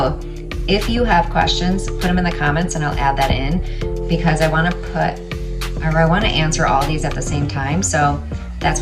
if you have questions, put them in the comments and I'll add that in, because I want to answer all these at the same time. So that's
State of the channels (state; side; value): identical; both; correlation 1.00